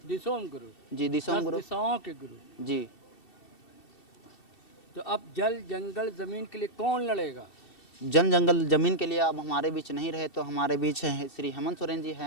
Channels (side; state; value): right; late; 2.7 ms